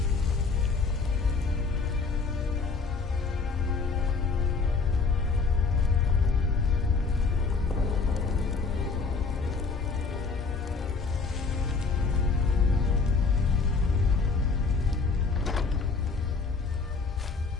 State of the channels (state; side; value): quieter; right; 4.5 dB